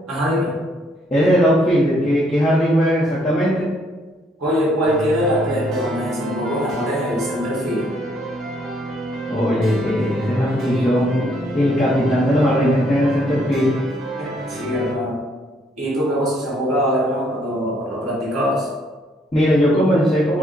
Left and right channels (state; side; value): normal; both; correlation 0.69